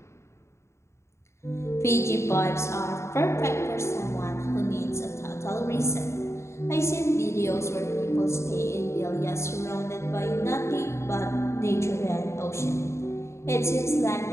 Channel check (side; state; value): right; late; 0.13 ms